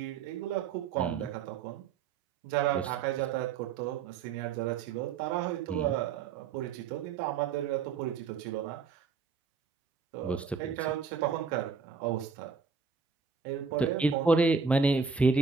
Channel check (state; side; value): quieter; left; 5.6 dB